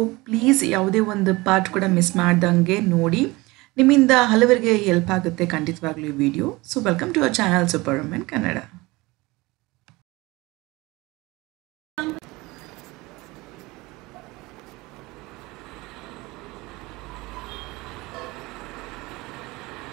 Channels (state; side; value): quieter; left; 22.2 dB